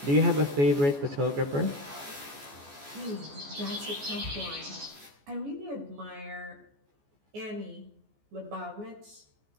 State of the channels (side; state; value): left; late; 14 ms